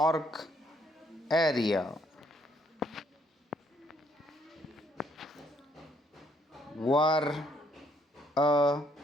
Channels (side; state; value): both; normal; correlation 0.68